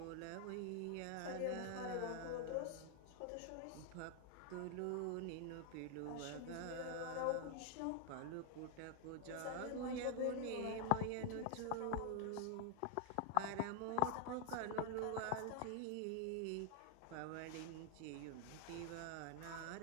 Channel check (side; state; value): both; different; correlation 0.00